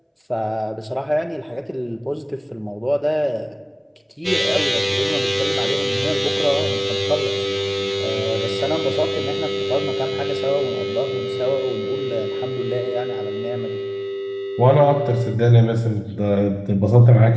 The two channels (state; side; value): identical; both; correlation 1.00